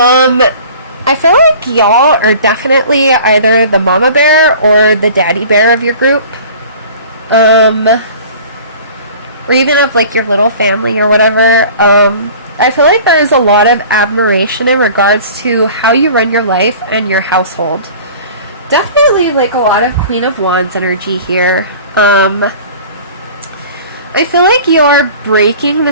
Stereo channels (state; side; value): inverted; both; correlation -0.44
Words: feel like y'all are definitely either the mama bear or the daddy bear of your group. Or even of like your little family or whatever. I feel like there is a lot of admiration in regards to how you run your life and your household. Definitely like a lot of Queen of Wands energy here. I feel like you're breaking